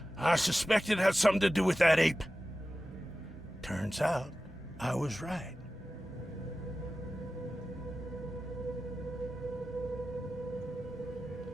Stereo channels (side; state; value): both; normal; correlation 0.94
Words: I suspected it had something to do with that ape. Turns out, I was right.